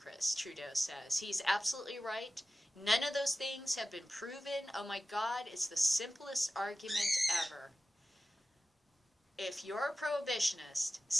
Trudeau says. He's absolutely right. None of those things have been proven. Oh my God, it's the simplest argument ever. If you're a prohibitionist,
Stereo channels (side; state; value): both; normal; correlation 0.95